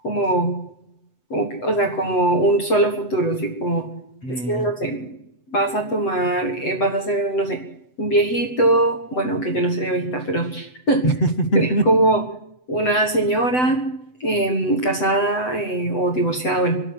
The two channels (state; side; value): late; right; 7.9 ms